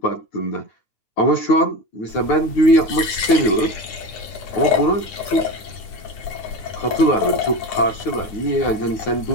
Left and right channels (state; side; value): late; right; 10 ms